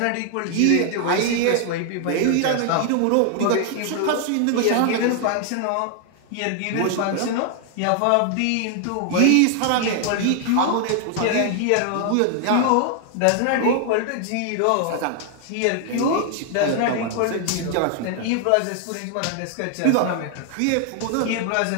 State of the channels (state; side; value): different; both; correlation 0.00